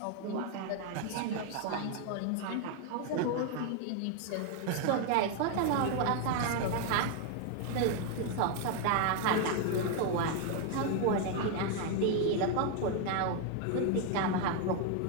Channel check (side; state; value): both; different; correlation 0.01